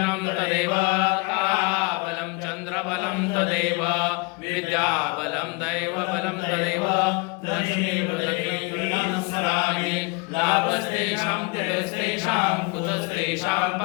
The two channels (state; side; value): quieter; right; 28.4 dB